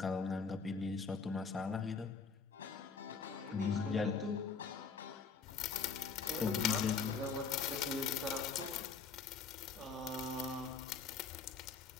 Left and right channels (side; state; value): right; quieter; 5.3 dB